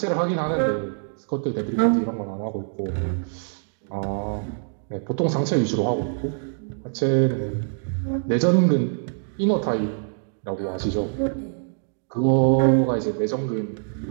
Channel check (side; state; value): left; silent; digital silence